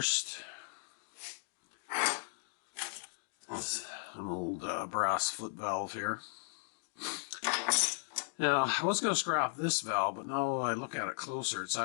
It's an old brass foot valve here. Now, I was going to scrap this valve, but now I look at it closer, it's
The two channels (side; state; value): right; silent; digital silence